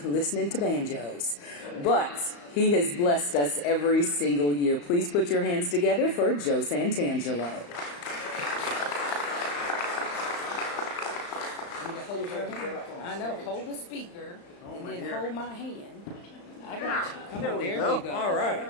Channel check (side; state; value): right; late; 35 ms